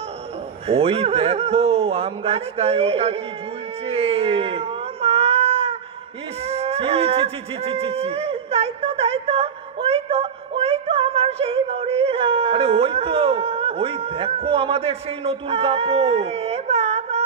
ওই দেখো আম গাছটায় ওটা কি ঝুলছে। ও মা, ইস, ছি ছি ছি ছি ছি ছি ছি। তাই তো ওই তো আমার সেই বড়ি। আরে ওই দেখো আমাদের সেই নতুন কাপড়। বাবা,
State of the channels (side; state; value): left; quieter; 7.0 dB